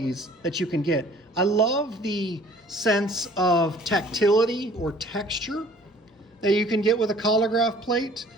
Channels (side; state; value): both; normal; correlation 0.53